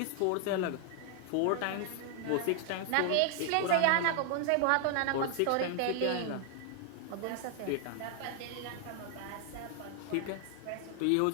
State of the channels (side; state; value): both; different; correlation 0.00